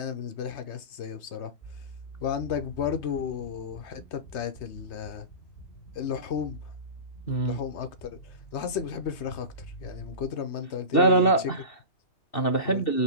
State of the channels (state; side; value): late; right; 3.2 ms